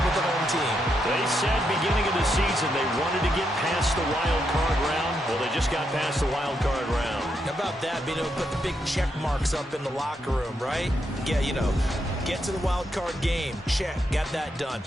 with the home team. They said beginning of the season they wanted to get past the wild card round. Well, they just got past the wild card round. How about that, being able to put the big check marks up in the locker room, right? Yeah, you know, get to the wild card game. Check. Got that done.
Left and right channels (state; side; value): normal; both; correlation 0.81